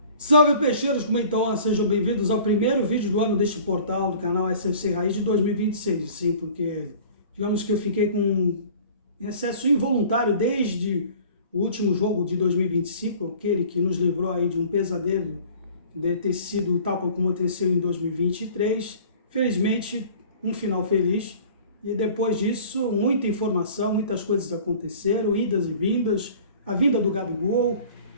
Salve peixeiros, como estão? Sejam bem-vindos ao primeiro vídeo do ano deste portal do canal SFC Raiz de 2026. Sim, porque digamos que eu fiquei com excesso involuntário desde o último jogo de 2025, aquele que nos livrou aí de um pesadelo de ter sido tal como aconteceu em 2023. Felizmente, um final feliz. E depois disso, muita informação, muitas coisas aconteceram, idas e vindas, a vinda do Gabigol.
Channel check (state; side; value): inverted; both; correlation -0.47